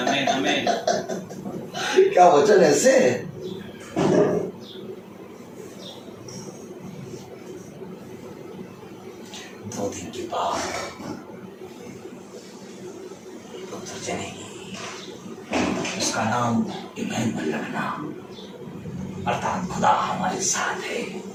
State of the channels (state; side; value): identical; both; correlation 1.00